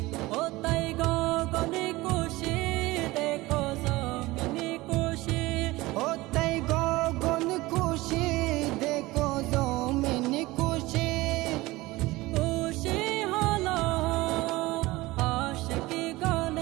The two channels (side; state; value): left; quieter; 19.9 dB